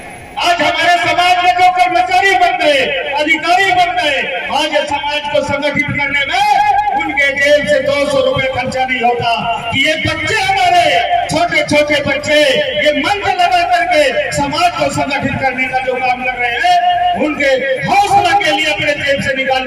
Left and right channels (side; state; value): both; identical; correlation 1.00